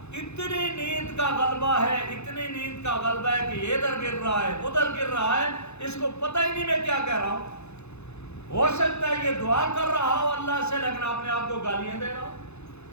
اتنی نیند کا غلبہ ہے، اتنی نیند کا غلبہ ہے کہ یہ ادھر گر رہا ہے ادھر گر رہا ہے، اس کو پتہ ہی نہیں میں کیا کہہ رہا ہوں۔ ہو سکتا ہے یہ دعا کر رہا ہو اللہ سے لیکن اپنے آپ کو گالیاں دے رہا ہو۔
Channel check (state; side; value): late; right; 0.81 ms